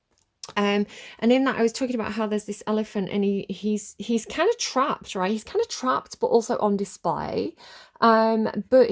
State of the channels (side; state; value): both; identical; correlation 1.00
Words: And in that I was talking about how there's this elephant, and he's kind of trapped, right? He's kind of trapped but also on display. But